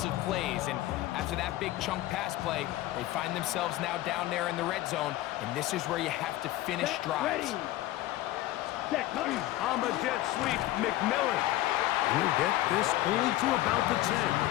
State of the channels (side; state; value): right; quieter; 15.6 dB